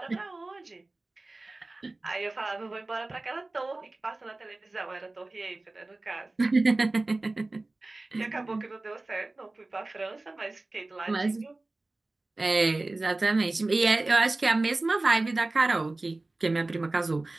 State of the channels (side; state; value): left; quieter; 3.1 dB